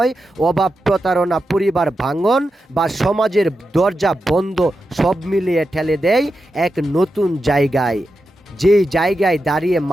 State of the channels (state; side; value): normal; both; correlation 0.89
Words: অভাব, প্রতারণা, পরিবার ভাঙন বা সমাজের দরজা বন্ধ সব মিলিয়ে ঠেলে দেয় এক নতুন জায়গায়। যেই জায়গায় দাঁড়িয়ে